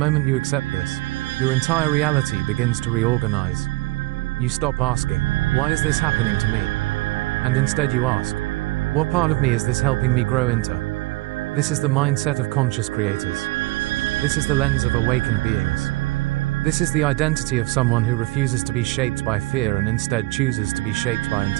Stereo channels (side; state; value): left; quieter; 20.6 dB